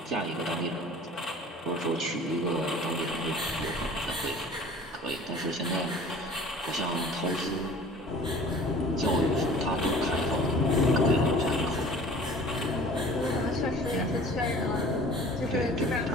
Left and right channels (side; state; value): both; normal; correlation 0.46